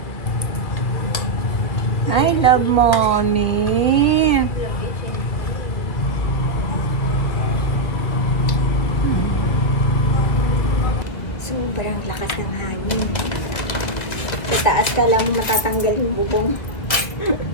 I love mommy. Love you, Chinky. Sobrang lakas ng hangin. Sa taas ka lang matatanggal yung bubong.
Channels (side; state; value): right; late; 1.8 ms